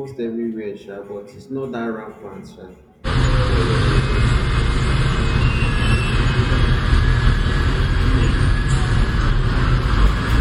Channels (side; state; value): both; identical; correlation 1.00